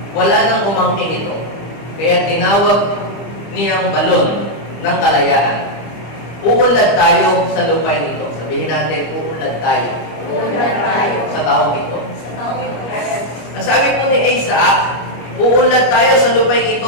Wala nang umangkin ito. Kaya tinawag niyang balon ng kalayaan. Uunlad tayo sa lupain ito. Sabihin natin, uunlad tayo. Uunlad tayo. Sa taong ito. Sa taong ito. Ang sabi po ni Isaac, uunlad tayo sa lupain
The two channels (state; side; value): late; right; 25 ms